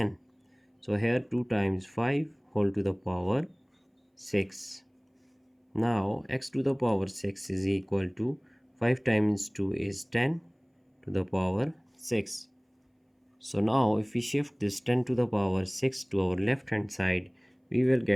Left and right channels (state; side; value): identical; both; correlation 1.00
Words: So here 2 times 5 whole to the power 6. Now x to the power 6 is equal to 5 times 2 is 10 to the power 6. So now if we shift this 10 to the power 6 to our left hand side, we will